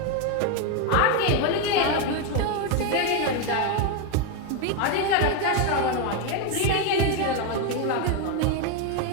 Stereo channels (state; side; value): different; both; correlation 0.02